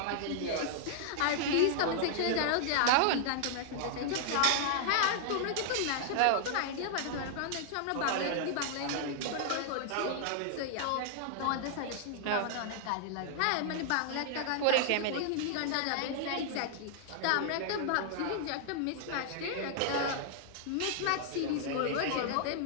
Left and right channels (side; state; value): both; different; correlation -0.01